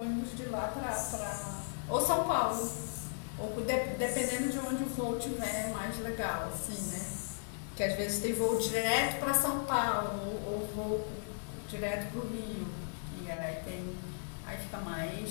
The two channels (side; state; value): right; silent; digital silence